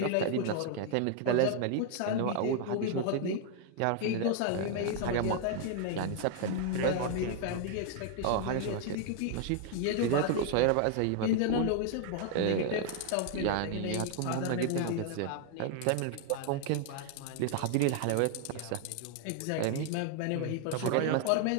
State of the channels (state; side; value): different; both; correlation 0.00